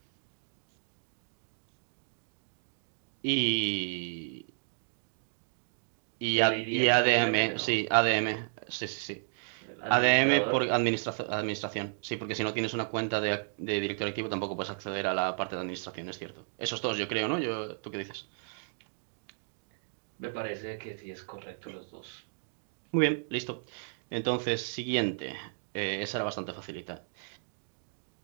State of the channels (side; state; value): left; silent; digital silence